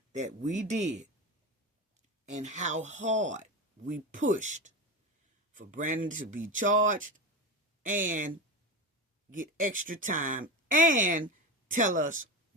that we did and how hard we pushed for Brandon to be charged and get extra time and tell us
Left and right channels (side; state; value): both; normal; correlation 0.21